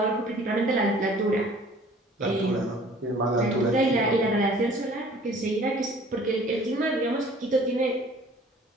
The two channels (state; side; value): normal; both; correlation 0.51